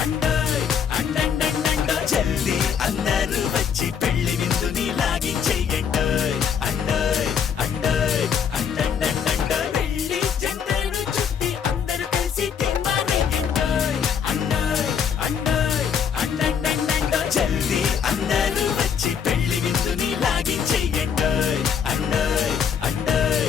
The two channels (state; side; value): quieter; right; 7.4 dB